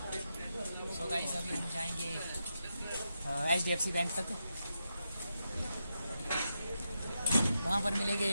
सो गाइस अभी हम जाएंगे HDFC बैंक तक। वहाँ पर मिलेंगे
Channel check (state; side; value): inverted; both; correlation -0.86